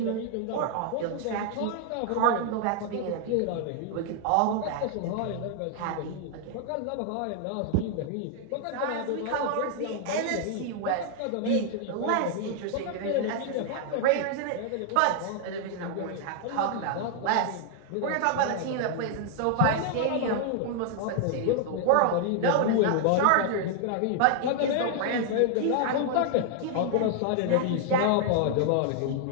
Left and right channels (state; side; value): different; both; correlation 0.00